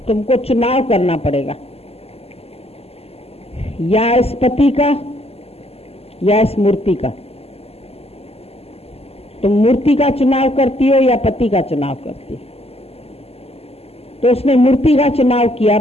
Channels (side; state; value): right; late; 0.29 ms